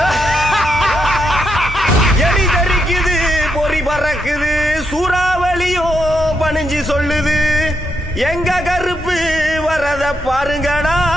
எலி தெரிக்குது, பொறி பறக்குது, சூறாவளியும் பணிஞ்சு சொல்லுது. எங்க கருப்பு வரத பாருங்கடா,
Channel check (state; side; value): normal; both; correlation 0.81